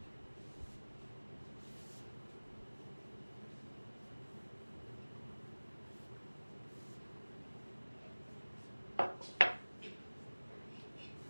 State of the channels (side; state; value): both; inverted; correlation -1.00